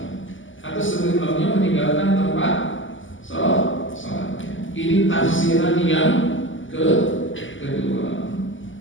atau sebelum imamnya meninggalkan tempat salatnya. Ini tafsiran yang kedua.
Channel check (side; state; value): right; late; 0.56 ms